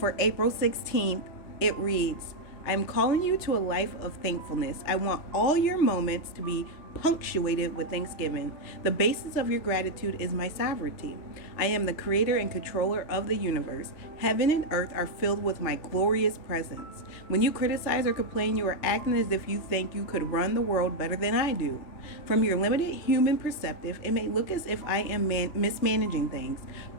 April 16th, it reads, I'm calling you to a life of thankfulness. I want all your moments to be punctuated with thanksgiving. The basis of your gratitude is my sovereignty. I am the creator and controller of the universe. Heaven and earth are filled with my glorious presence. When you criticize or complain, you are acting as if you think you could run the world better than I do. From your limited human perspective, it may look as if I am mismanaging things,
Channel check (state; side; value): late; right; 3.3 ms